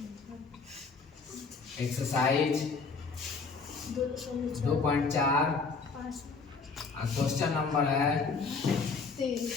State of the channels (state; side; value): quieter; right; 4.6 dB